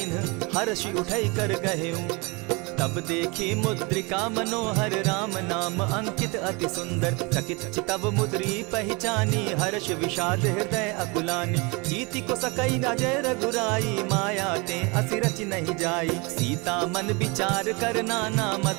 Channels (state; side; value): quieter; left; 28.5 dB